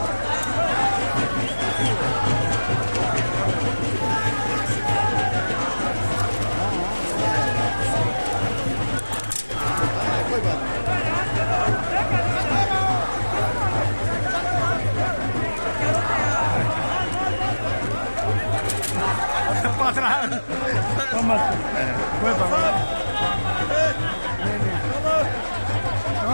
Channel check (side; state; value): both; inverted; correlation -1.00